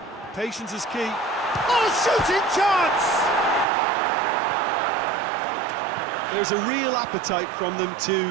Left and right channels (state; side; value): drops out; left; at 3.7 s